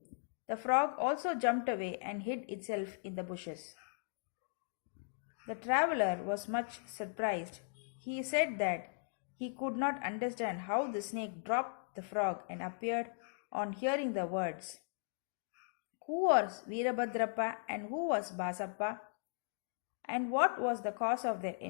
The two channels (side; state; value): right; silent; digital silence